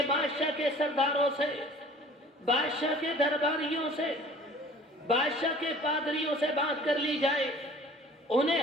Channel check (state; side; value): normal; both; correlation 0.48